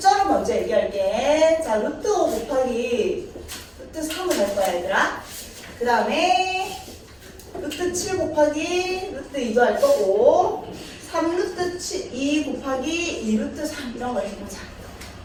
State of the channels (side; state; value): both; identical; correlation 1.00